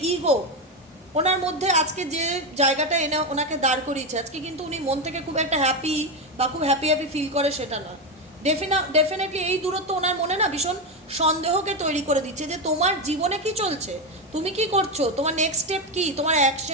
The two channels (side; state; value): both; normal; correlation 0.11